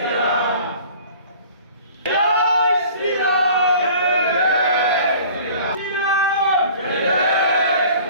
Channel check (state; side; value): inverted; both; correlation -0.47